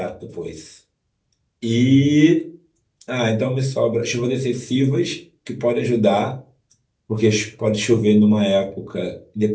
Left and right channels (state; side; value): identical; both; correlation 1.00